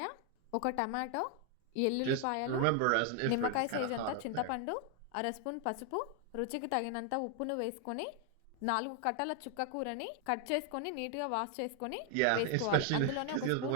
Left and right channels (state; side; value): different; both; correlation 0.00